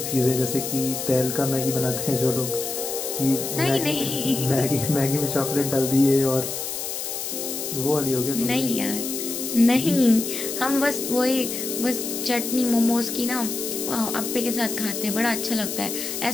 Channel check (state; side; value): noise; left; hiss, 5 dB below the sound